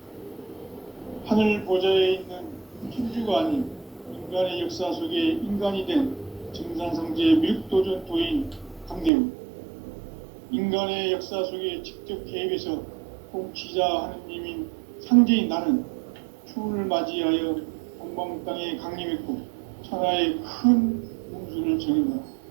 하늘 보좌에 있는 천주가 아닌 인간의 역사 속에 인간이 된 증산상제 미륵도전 도인 강대우. 인간의 역사 속에 직접 개입해서 통치자 하느님인 상제인 나는 추운을 맞이하여 동방 땅에 강림했고 천하의 큰 문수를 정했노라.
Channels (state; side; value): drops out; left; at 9.1 s